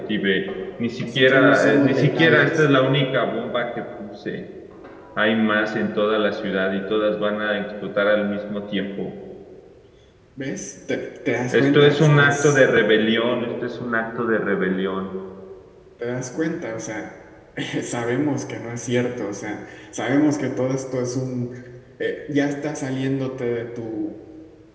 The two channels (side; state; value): both; identical; correlation 1.00